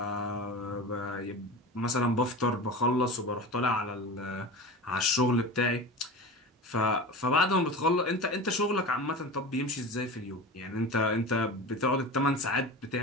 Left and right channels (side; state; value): both; normal; correlation 0.30